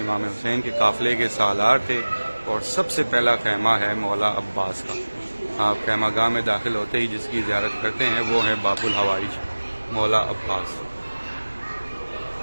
امام حسین کے قافلے کے سالار تھے، اور سب سے پہلا خیمہ ہے مولا عباس کا۔ آپ خیمہ گاہ میں داخل ہوتے ہی جس کی زیارت کرتے ہیں وہ ہے باب الحوائج مولا عباس۔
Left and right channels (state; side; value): inverted; both; correlation -1.00